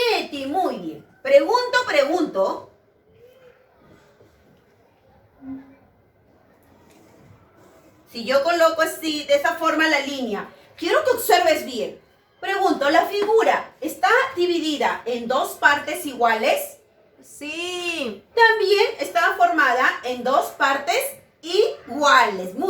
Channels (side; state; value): both; identical; correlation 1.00